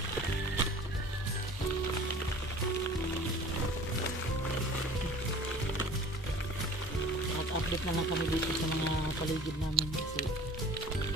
At update na lang kami dito sa mga paligid namin kasi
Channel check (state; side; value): normal; both; correlation 0.45